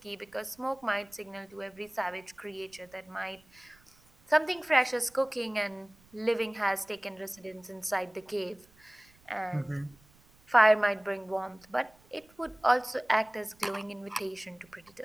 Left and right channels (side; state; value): right; noise; rumble, 29 dB below the sound